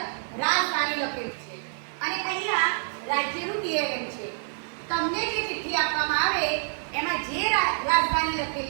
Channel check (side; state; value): left; silent; digital silence